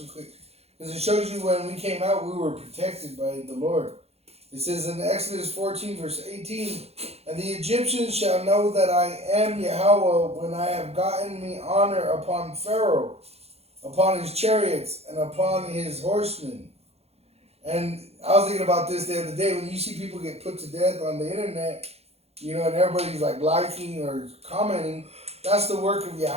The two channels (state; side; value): late; left; 0.30 ms